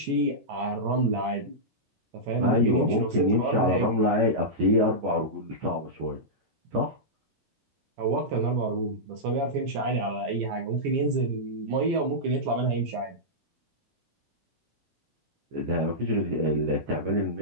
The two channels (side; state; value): left; late; 14 ms